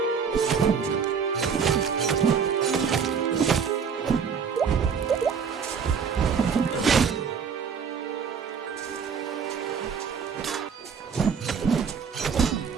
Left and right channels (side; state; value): left; quieter; 6.4 dB